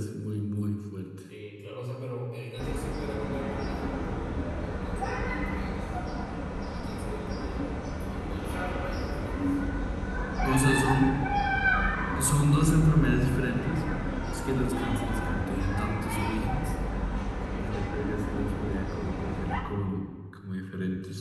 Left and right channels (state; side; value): identical; both; correlation 1.00